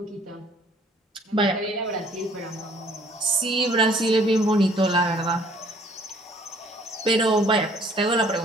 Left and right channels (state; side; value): normal; both; correlation 0.58